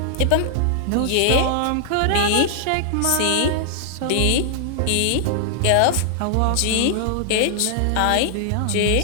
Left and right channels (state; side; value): different; both; correlation -0.01